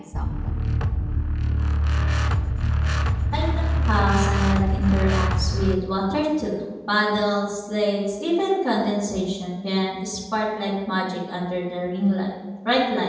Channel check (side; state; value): both; identical; correlation 1.00